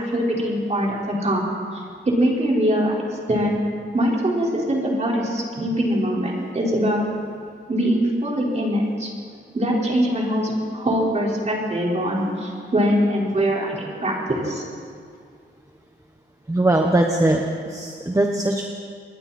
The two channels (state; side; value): normal; both; correlation 0.71